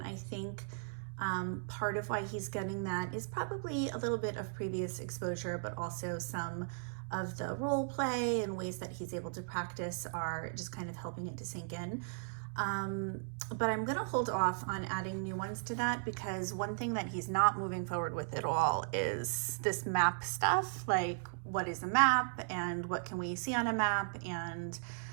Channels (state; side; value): silent; left; digital silence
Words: I think part of why he's getting that is probably a little bit of previous exposure, but also some of the role play and ways that he's able to practice are just kind of helping it to sink in. But I'm going to hold off on adding new ones to that because one thing that he's not moving forward with at all is this map stuff. Like, what is a map and what can we see on a map? And